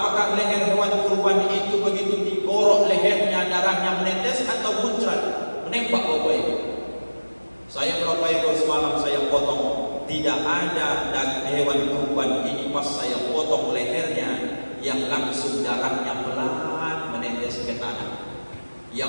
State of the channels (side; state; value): both; inverted; correlation -1.00